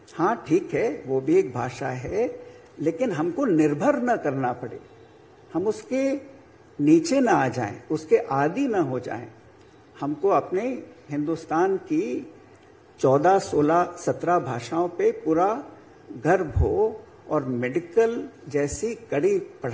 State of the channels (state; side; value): identical; both; correlation 1.00